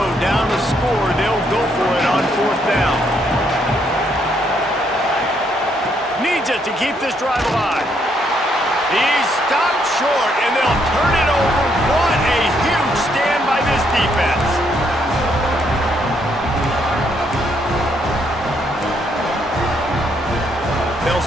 down to score. They'll go for it on 4th down. Needs it to keep this drive alive. He's stopped short, and they'll turn it over. What a huge stand by this defense. They'll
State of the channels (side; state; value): both; normal; correlation 0.72